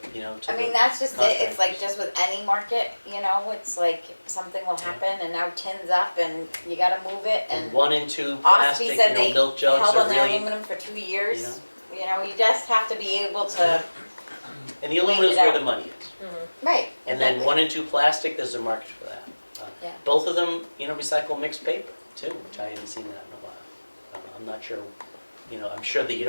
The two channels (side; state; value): both; inverted; correlation -1.00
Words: to I mean, the that's just it. It's like contractors. just with any market, it's like something will happen and now tin's up and you gotta move it And and 1 and 2 Ospey plastic, said they milk jugs held are on the really, aluminum for 2 years. You just have to be able to, and the aluminum's it where out. the money is. right. And then exactly. 1 and 2 plastic, there's a market for that. Yeah. Both of them, recycle mixed paper too, which I haven't seen that in a while. I'm not sure, I'm sure that you